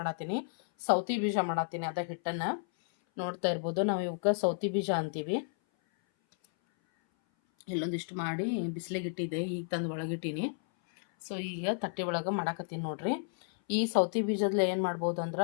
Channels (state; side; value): silent; right; 56 dB below the other